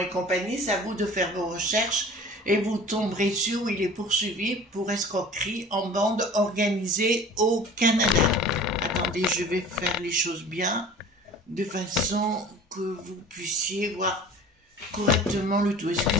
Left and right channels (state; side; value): normal; both; correlation 0.42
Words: compagnie, c'est à vous de faire vos recherches et vous tomberez sur où il est poursuivi pour escroquerie en bande organisée au Canada. Attendez, je vais faire les choses bien de façon que vous puissiez voir correctement le tout.